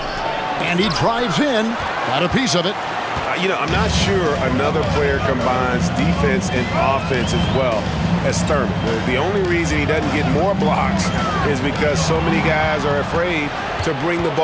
And he drives in. Got a piece of it. I'm not sure another player combines defense and offense as well as Thurman. The only reason he doesn't get more blocks is because so many guys are afraid to bring the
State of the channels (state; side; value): identical; both; correlation 1.00